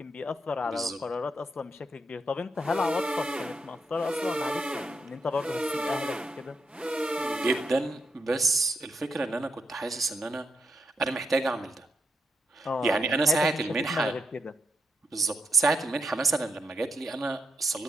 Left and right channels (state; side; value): normal; both; correlation 0.80